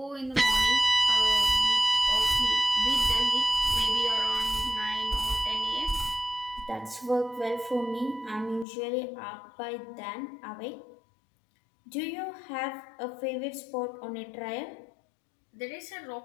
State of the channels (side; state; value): right; drops out; at 8.7 s